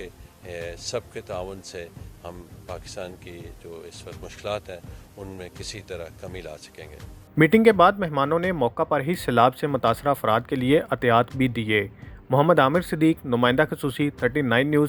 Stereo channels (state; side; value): identical; both; correlation 1.00